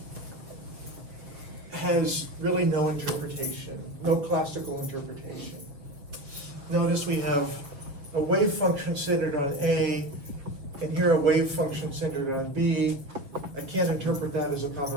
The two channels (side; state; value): left; late; 6.9 ms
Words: has really no interpretation, no classical interpretation. Notice we have a wave function centered on A, and here here a wave function centered on B. I can't interpret that as a